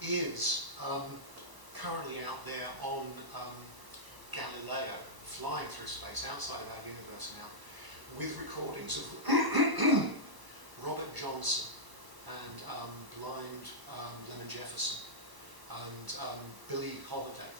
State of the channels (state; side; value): late; left; 1.1 ms